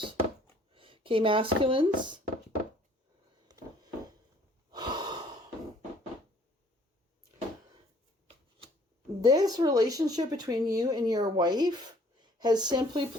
Okay, masculines. This relationship between you and your wife has simply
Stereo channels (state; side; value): normal; both; correlation 0.58